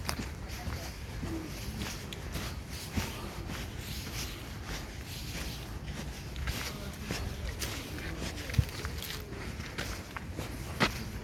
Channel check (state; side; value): identical; both; correlation 1.00